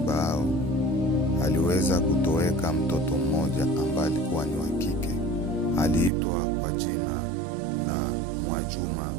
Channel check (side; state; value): left; drops out; at 6.1 s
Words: hao aliweza kutoweka mtoto mmoja ambaye alikuwa ni wa kike. Aliitwa kwa jina la Mwajuma